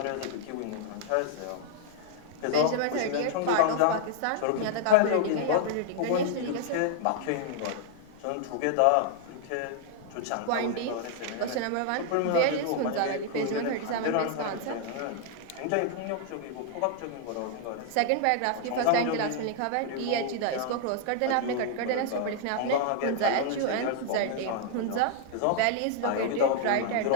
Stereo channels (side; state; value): both; different; correlation 0.00